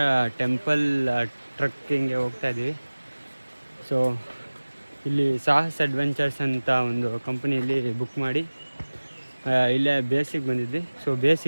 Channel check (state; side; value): inverted; both; correlation -1.00